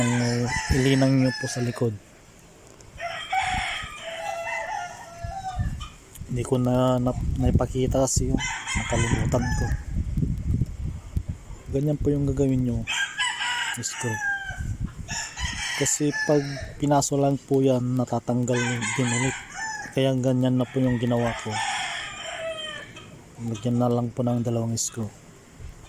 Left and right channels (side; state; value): both; identical; correlation 1.00